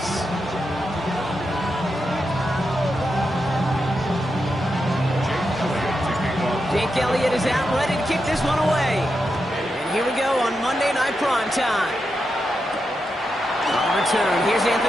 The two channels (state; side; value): normal; both; correlation 0.87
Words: Jake Elliott is out, ready to kick this one away. And here we go on Monday Night Primetime. On return, here's